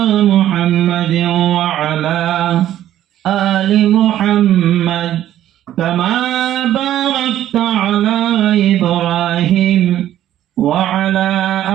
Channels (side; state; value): left; quieter; 12.3 dB